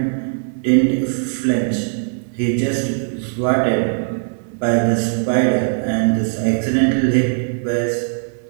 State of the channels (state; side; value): silent; left; 58 dB below the other